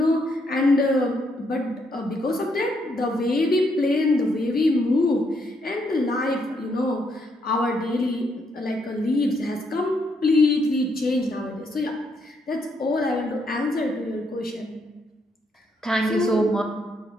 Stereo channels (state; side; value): normal; both; correlation 0.75